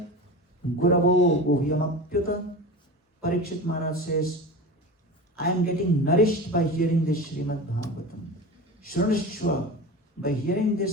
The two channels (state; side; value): normal; both; correlation 0.30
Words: guravo guhyam apyuta. Parikshit Maharaj says, I am getting nourished by hearing this Srimad Bhagavatam. Shrunashva, by hearing